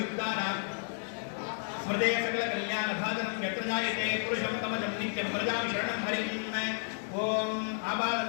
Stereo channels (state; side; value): silent; right; digital silence